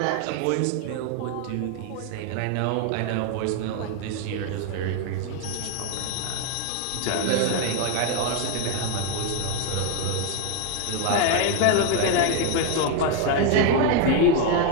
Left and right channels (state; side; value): different; both; correlation 0.01